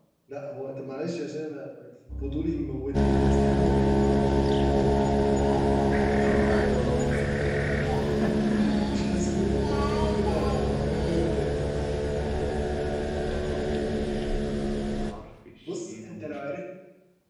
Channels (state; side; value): identical; both; correlation 1.00